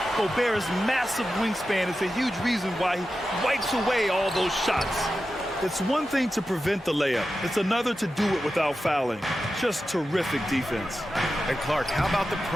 Gobert's massive wingspan is a huge reason why he wipes away all those shots. It's one thing to prevent the layup. It's another to do it without fouling. Just terrific defense. And Clark, how about the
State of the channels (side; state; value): both; normal; correlation 0.92